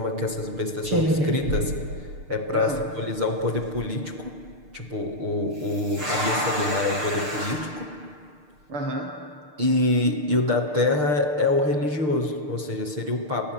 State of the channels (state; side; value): late; left; 6.7 ms